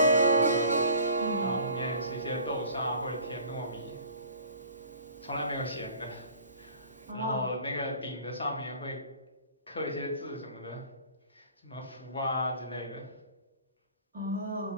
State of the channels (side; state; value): both; inverted; correlation -0.48